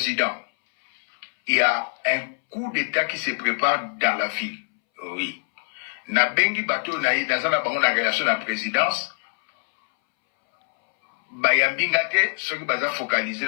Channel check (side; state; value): right; silent; 63 dB below the other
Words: il y a un coup d'État qui se prépare dans la ville. Oui. Na bengi bateau na yi, dans la relation à la présidence, Bayambingate, ceux qui sont focalisés